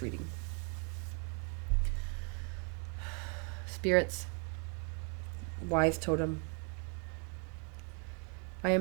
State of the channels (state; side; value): quieter; left; 37.4 dB